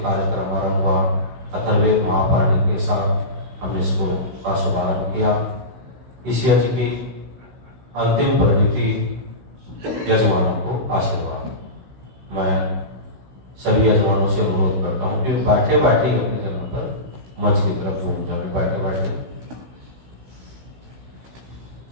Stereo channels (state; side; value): late; left; 16 ms